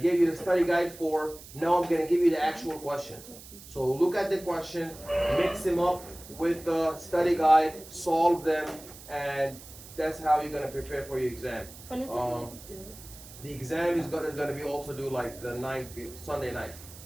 gave you the study guide for. Now I'm gonna give you the actual questions. So look at the questions, mix them up with the study guide, solve them, and that's how you're gonna prepare for your exam. When is it going to do? The exam is gonna be also due like the night, Sunday night.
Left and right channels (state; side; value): noise; right; hiss, 17 dB below the sound